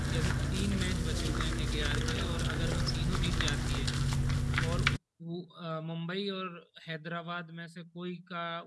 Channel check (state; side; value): identical; both; correlation 1.00